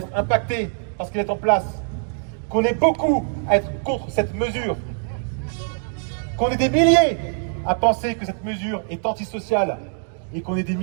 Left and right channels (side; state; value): left; silent; 59 dB below the other